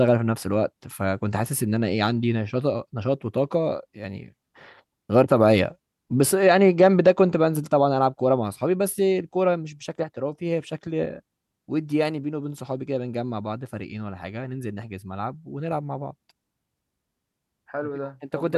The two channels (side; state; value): both; identical; correlation 1.00